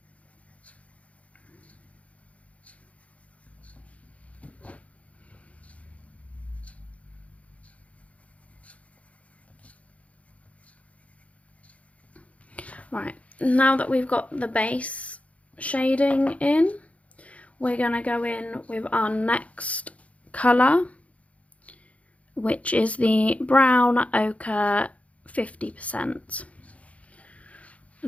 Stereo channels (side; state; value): right; late; 0.066 ms